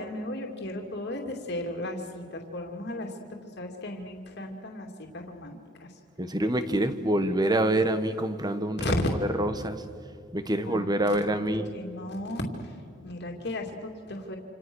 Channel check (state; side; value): normal; both; correlation 0.58